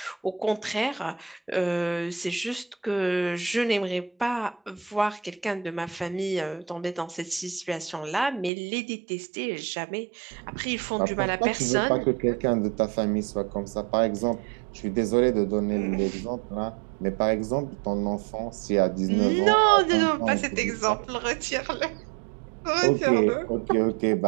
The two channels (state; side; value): drops out; left; at 8.5 s